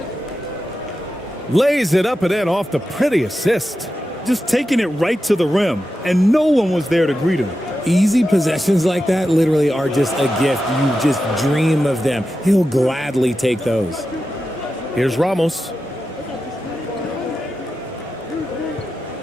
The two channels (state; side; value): normal; both; correlation 0.91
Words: Lays it up and in off the pretty assist. Just taking it right to the rim, and no one was there to greet him. Easy possessions like that literally are just a gift. You just dream of them. He'll gladly take those. Here's Ramos.